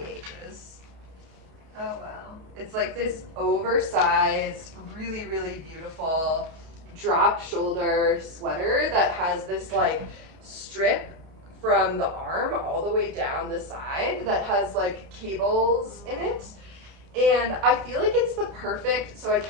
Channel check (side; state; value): left; late; 32 ms